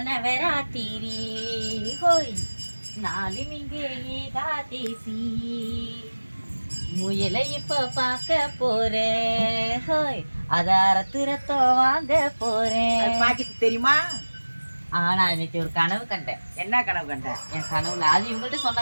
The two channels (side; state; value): both; inverted; correlation -1.00